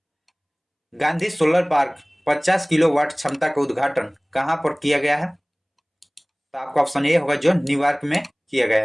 गांधी सोलर पार्क 50 किलोवाट क्षमता का उद्घाटन कहां पर किया गया है? तो आपका ऑप्शन ए होगा, जो न्यूयॉर्क में किया गया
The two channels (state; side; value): identical; both; correlation 1.00